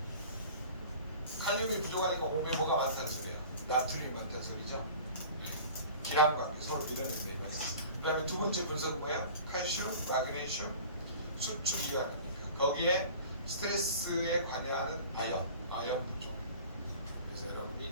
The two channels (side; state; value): both; inverted; correlation -0.43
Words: 칼륨이 부족하니까 몸에 뭐가 많다는 소리예요? 나트륨이 많다는 소리죠? 네. 기람 관계. 서로 밀어낸다 이거는. 그 다음에 두 번째 분석은 뭐야? 칼슘, 마그네슘, 수축 이완입니까? 거기에 스트레스에 관여하는 아연 부족. 그래서